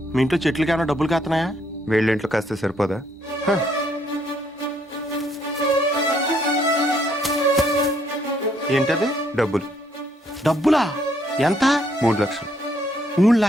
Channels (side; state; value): both; normal; correlation 0.69